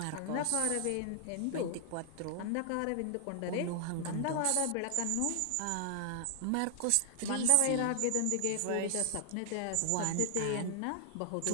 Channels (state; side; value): different; both; correlation 0.00